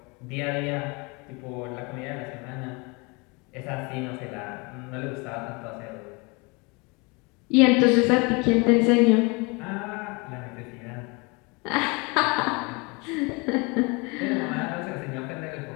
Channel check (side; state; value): right; quieter; 28.6 dB